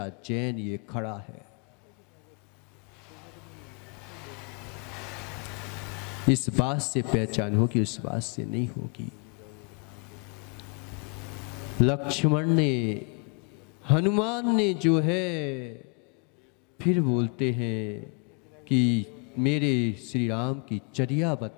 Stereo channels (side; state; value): right; quieter; 37.9 dB